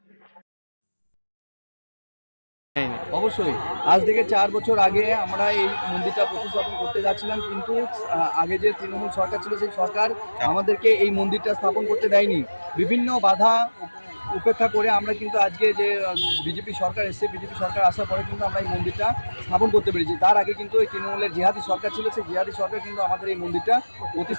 অবশ্যই আজ থেকে 4 বছর আগে আমরা এই মন্দিরটা প্রতিস্থাপন করতে যাচ্ছিলাম, কিন্তু আগে যে তৃণমূল সরকার ছিল সেই সরকার আমাদেরকে এই মন্দিরটা স্থাপন করতে দেয়নি। বিভিন্ন বাধা উপেক্ষা করে আমরা কিন্তু আজকে যে বিজেপি সরকার এসেছে, বিজেপি সরকার আসার পরে কিন্তু আমরা এই মন্দিরটা স্থাপন করতে পেরেছি। তার আগে কিন্তু এই তৃণমূলের জিহাদি সরকার ছিল, সেই জিহাদি সরকার কিন্তু আমাদের এই মন্দিরটা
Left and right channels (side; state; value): both; inverted; correlation -1.00